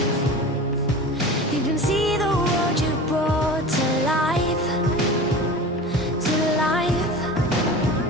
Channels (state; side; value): normal; both; correlation 0.34